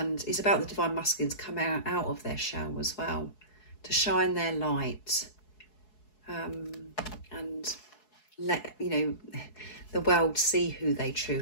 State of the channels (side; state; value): right; late; 4.7 ms